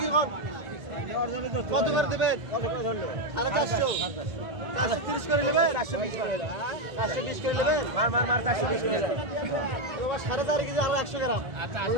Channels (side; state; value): left; late; 1.8 ms